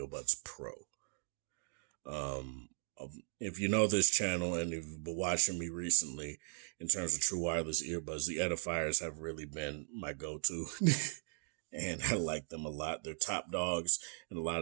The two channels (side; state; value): left; silent; digital silence